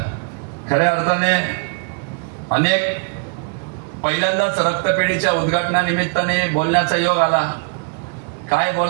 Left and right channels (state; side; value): quieter; left; 35.7 dB